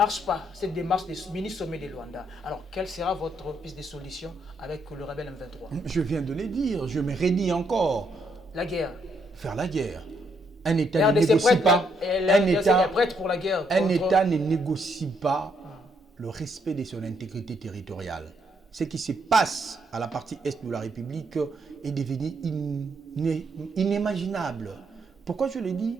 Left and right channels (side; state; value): both; normal; correlation 0.74